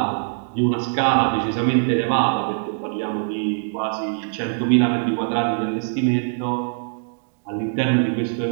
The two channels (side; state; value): left; silent; digital silence